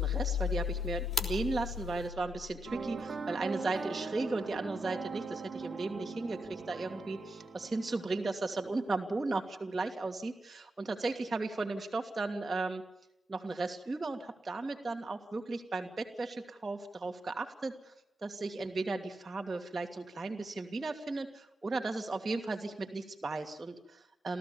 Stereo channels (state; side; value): normal; both; correlation 0.86